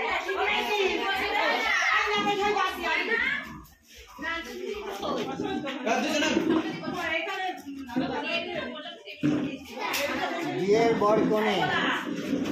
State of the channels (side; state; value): both; identical; correlation 1.00